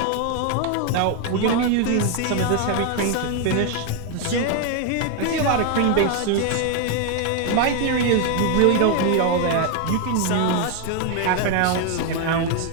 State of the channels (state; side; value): different; both; correlation 0.01